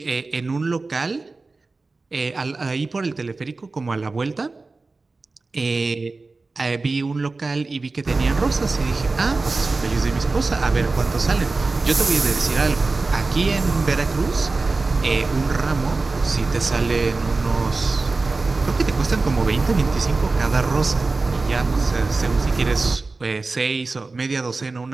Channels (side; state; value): left; quieter; 3.7 dB